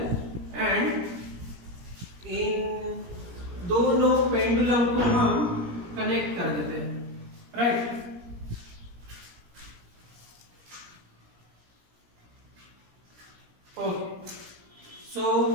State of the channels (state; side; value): late; left; 17 ms